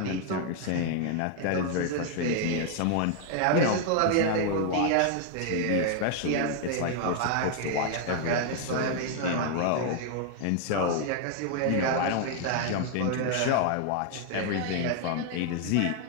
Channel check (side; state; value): both; different; correlation 0.00